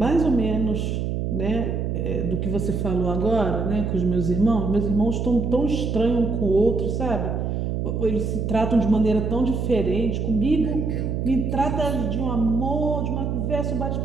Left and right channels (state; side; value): noise; right; hum, 1 dB below the sound